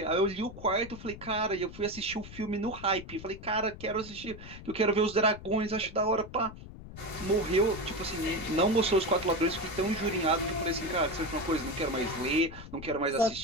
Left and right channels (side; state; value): left; noise; rumble, 14 dB below the sound